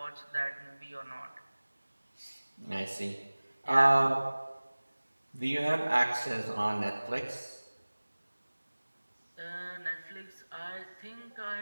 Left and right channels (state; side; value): inverted; both; correlation -1.00